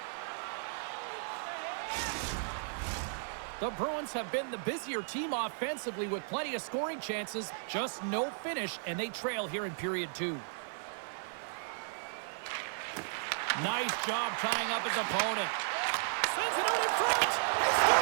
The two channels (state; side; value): silent; left; 55 dB below the other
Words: The Bruins have been the busier team offensively with plenty of scoring chances. Just no finish, and they trail here in period 2. Nice job tying up his opponent. Sends it out in front.